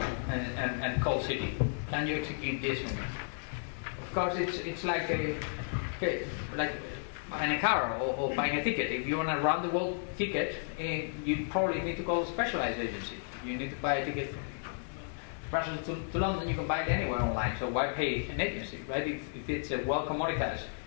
and call Citi. Can you execute this for me? Of course, it's like buying a car or buying a ticket. If you want a round-the-world ticket, you probably need to call a specialized agency. You need to buy a ticket from Brussels to London. You can buy it anywhere online. So why pay an agency, right? If it's a well commoditized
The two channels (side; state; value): right; silent; digital silence